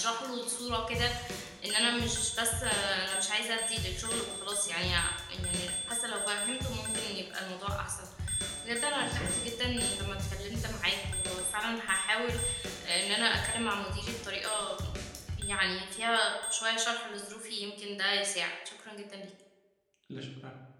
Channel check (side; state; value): both; identical; correlation 1.00